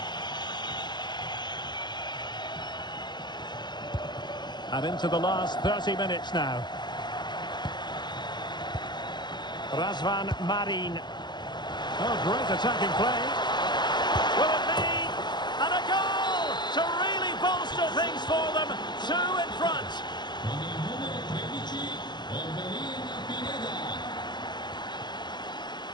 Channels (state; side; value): late; right; 0.21 ms